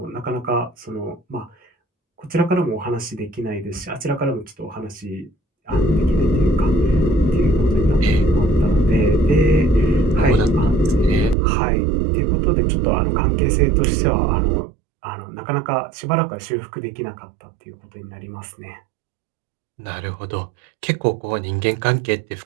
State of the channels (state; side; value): drops out; left; at 11.4 s